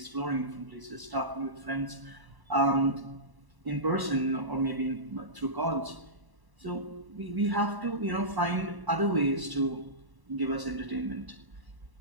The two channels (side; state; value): left; late; 1.0 ms